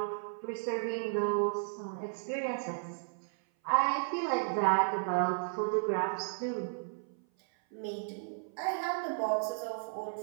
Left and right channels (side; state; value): left; silent; 55 dB below the other